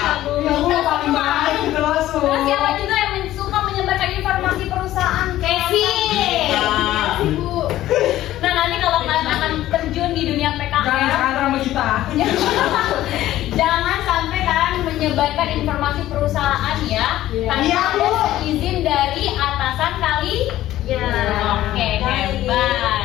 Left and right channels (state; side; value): quieter; right; 14.2 dB